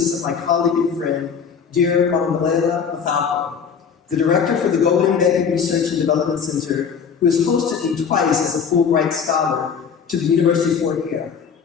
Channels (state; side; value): quieter; right; 6.6 dB